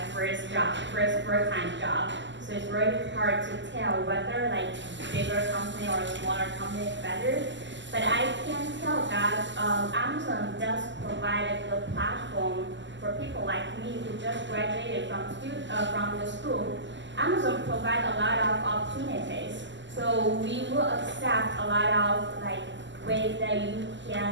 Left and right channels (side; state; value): left; late; 0.54 ms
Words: first full-time job. So it's very hard to tell whether like bigger company or smaller company is better. But I can tell that Amazon does provide a good platform for people like me who just graduated from the school. Amazon provides a lot of opportunities. So we will accept a lot of like ways that you